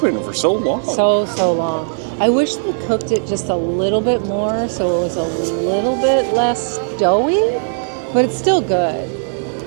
for so long. So long. I wish they cooked it just a little bit more so it was a little bit less doughy, but it's still good.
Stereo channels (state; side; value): silent; left; 59 dB below the other